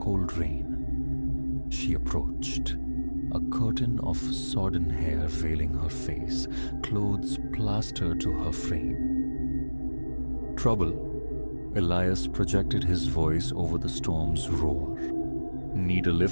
rain. She approached, a curtain of sodden hair veiling her face, clothes plastered to her frame. Trouble? Elias projected his voice over the storm's roar. Need a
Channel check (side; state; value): both; inverted; correlation -1.00